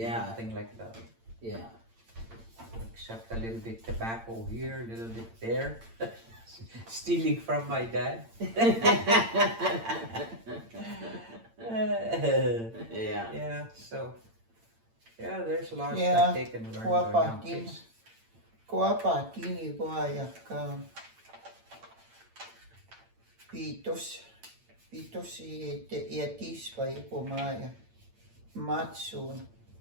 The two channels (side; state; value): left; late; 8.8 ms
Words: Nothing like that, yeah. except a little bit tobacco here, a little bit there. Stealing from my dad. Yeah. Yeah, so, yeah, there's lots Yeah, that they can learn kuapa, by young din. kids. Kuapa, tini guayak ka. Pitos iatis pa ipumaya. Matsun.